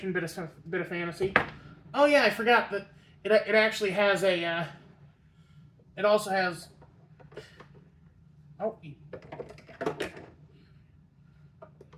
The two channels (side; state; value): both; identical; correlation 1.00